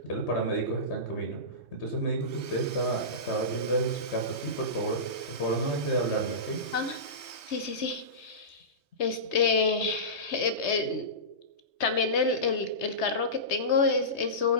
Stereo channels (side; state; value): right; late; 3.2 ms